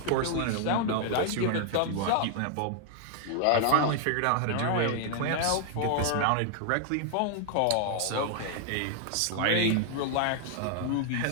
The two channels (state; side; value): different; both; correlation 0.00